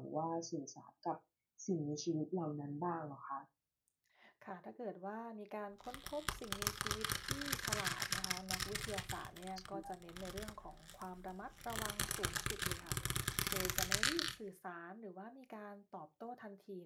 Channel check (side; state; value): both; identical; correlation 1.00